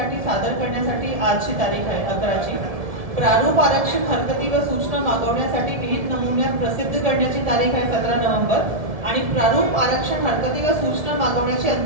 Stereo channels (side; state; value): left; late; 1.7 ms